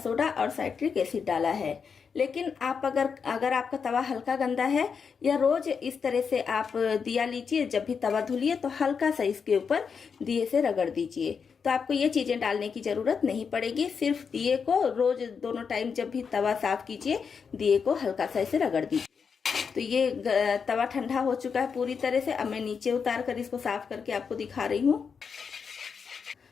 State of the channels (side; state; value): right; quieter; 6.1 dB